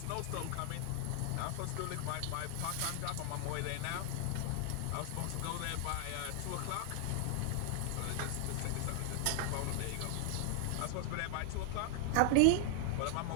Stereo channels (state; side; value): different; both; correlation 0.00